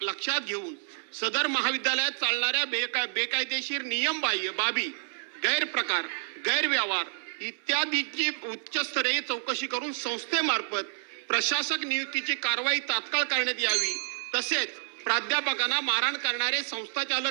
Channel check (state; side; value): silent; left; 59 dB below the other